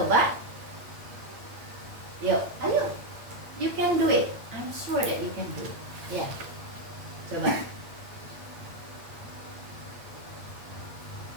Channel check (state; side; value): late; left; 8.6 ms